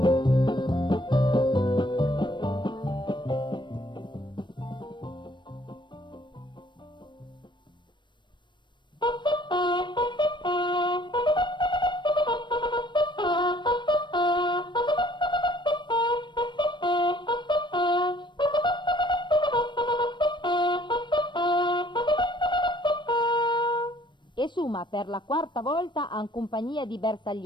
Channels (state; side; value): late; right; 0.22 ms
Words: Per la quarta volta in compagnia di